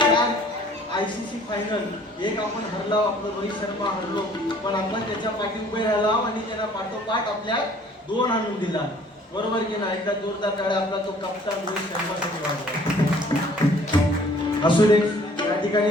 ICC फायनल, एक आपण हरलो, आपलं रोहित शर्मा हरलो, पण आपण त्याच्या पाठी उभे राहिलो आणि त्याला पाठोपाठ आपल्या 2 आणून दिला. बरोबर की नाही? एकदा जोरदार टाळ्या आपला तो कप्तान रोहित शर्मासाठी वाजवा. असू दे. या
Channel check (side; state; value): both; normal; correlation 0.55